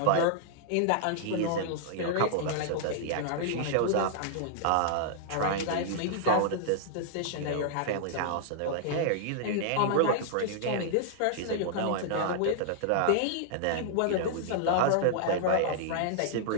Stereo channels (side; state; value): both; different; correlation -0.01